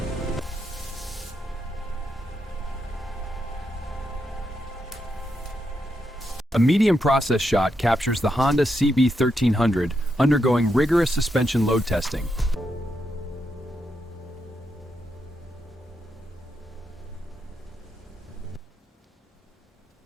A medium process shot captures the Honda CB1300 undergoing rigorous suspension load testing.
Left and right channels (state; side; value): normal; both; correlation 0.83